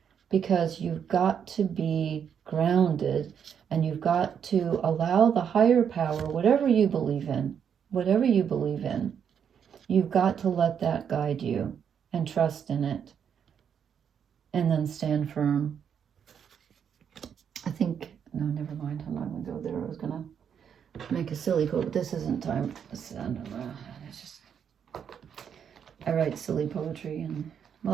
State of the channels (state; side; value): quieter; left; 7.9 dB